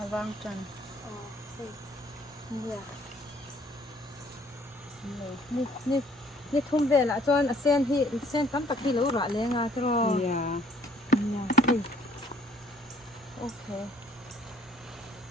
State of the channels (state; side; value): normal; both; correlation 0.60